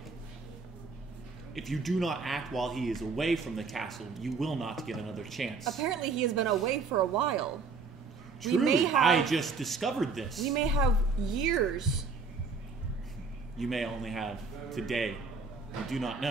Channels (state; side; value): quieter; left; 4.4 dB